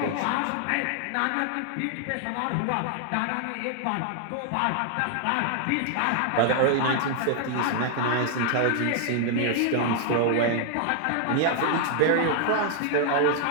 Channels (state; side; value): different; both; correlation 0.00